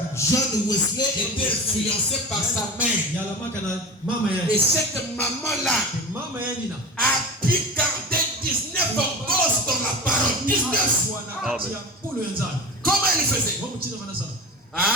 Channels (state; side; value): normal; both; correlation 0.31